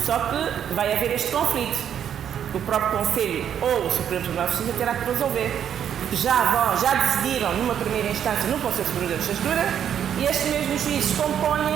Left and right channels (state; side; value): quieter; left; 9.1 dB